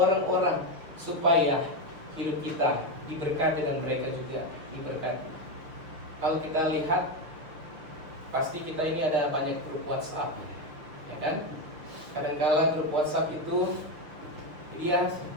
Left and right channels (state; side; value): late; left; 6.4 ms